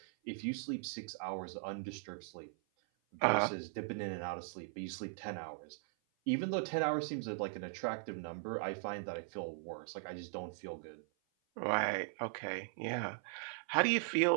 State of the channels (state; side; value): silent; left; 52 dB below the other